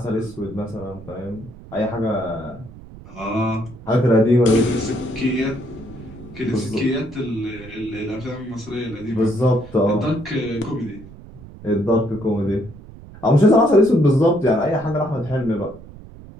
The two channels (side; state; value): right; noise; rumble, 17 dB below the sound